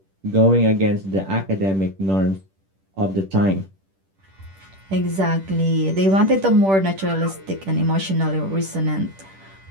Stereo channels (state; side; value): late; left; 10 ms